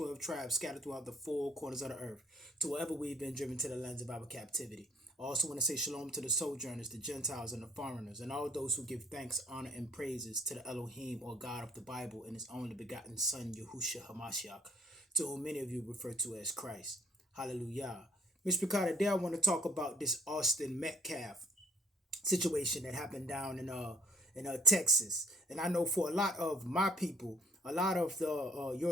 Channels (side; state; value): both; normal; correlation 0.56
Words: tribes scattered throughout the four corners of the earth, to wherever we've been driven to the lands of our captivity. I also want to say shalom to the sojourners, the Gentiles, and the foreigners, and all those who give thanks, honor, and praises to the Elohim, or God of the Bible, and his only begotten Son, Yahushua HaMashiach, to whom many of you refer to as Christ. Hallelujah. Mr. Picard, today I want to talk about this Austin Metcalf situation that happened down in Texas. And I know for a lot of my people, a lot of the